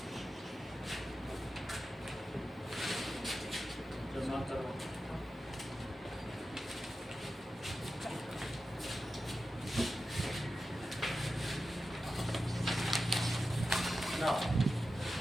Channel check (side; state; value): both; normal; correlation 0.92